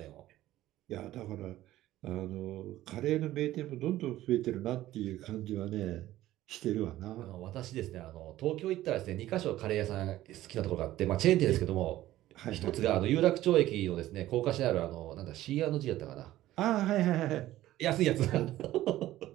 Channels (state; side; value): quieter; left; 14.8 dB